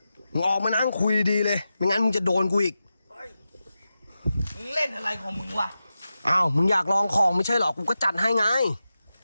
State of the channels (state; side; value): inverted; both; correlation -0.92